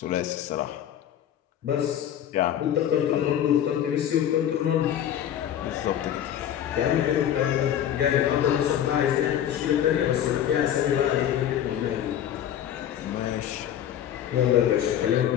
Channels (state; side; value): quieter; right; 10.5 dB